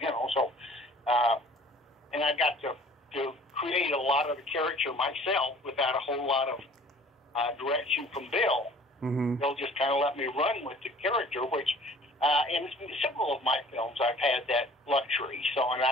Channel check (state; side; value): normal; both; correlation 0.51